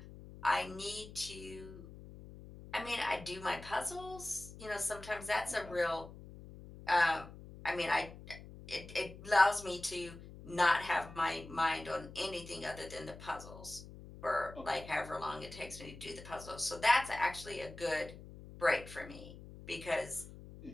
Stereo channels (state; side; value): noise; left; hum, 15 dB below the sound